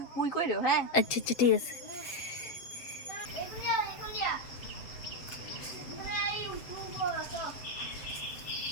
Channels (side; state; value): right; late; 7.8 ms